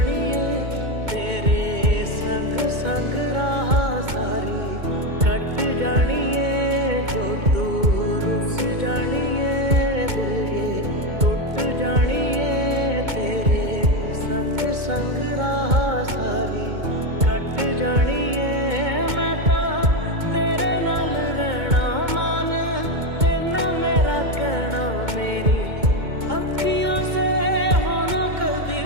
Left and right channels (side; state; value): left; late; 2.2 ms